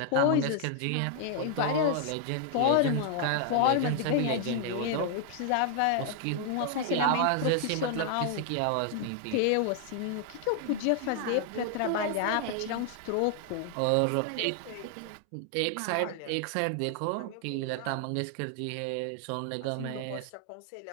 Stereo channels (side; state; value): both; different; correlation 0.00